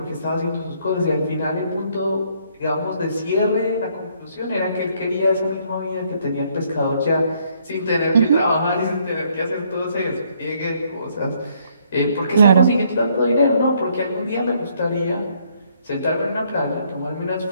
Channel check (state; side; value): inverted; both; correlation -0.68